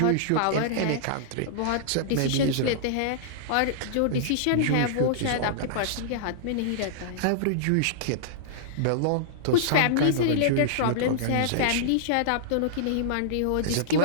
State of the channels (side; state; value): both; different; correlation -0.02